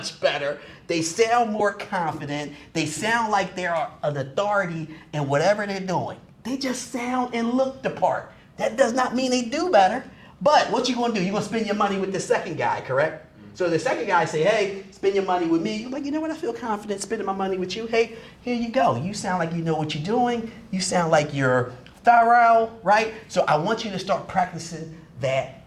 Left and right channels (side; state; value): both; identical; correlation 1.00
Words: better They sound more confident. They sound like they're an authority in whatever they're doing. They just sound and look the part. That does not mean they do better. But what you gonna do? You're gonna spend your money with the second guy, correct? So the second guy say, hey, spend your money with me. You're like, you know what? I feel confident spending my money with you. Hey, here you go. You sound like you know what you're doing. You sound like you're thorough, right? So I want you to start practicing that